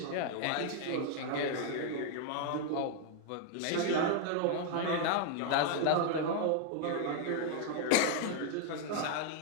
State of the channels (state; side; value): different; both; correlation 0.00